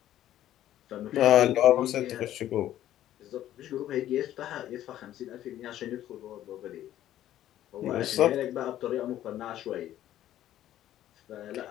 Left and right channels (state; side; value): quieter; right; 12.6 dB